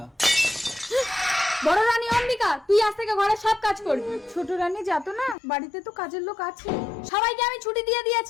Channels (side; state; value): right; drops out; at 5.4 s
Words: বড় রানী অম্বিকা, তুই আজ থেকে ঘরের সব কাজ করবি। ছোট রানী যাতো না, বাড়িতে তো কাজের লোক আছে। সবাইকে আমি ছুটি দিয়ে